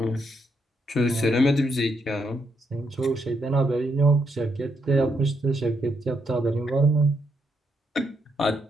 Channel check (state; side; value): normal; both; correlation 0.78